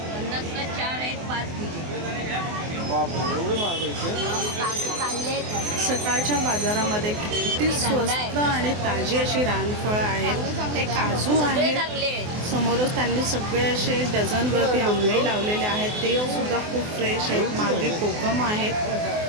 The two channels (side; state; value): left; late; 24 ms